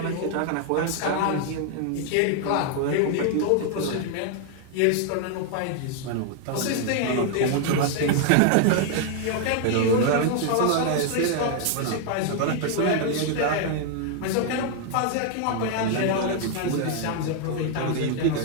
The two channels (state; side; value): different; both; correlation 0.00